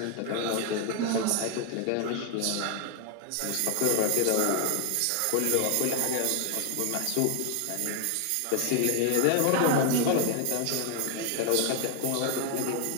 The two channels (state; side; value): different; both; correlation 0.00